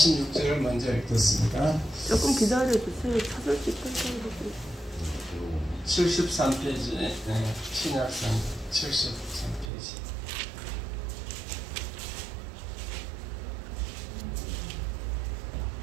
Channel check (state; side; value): drops out; left; at 9.7 s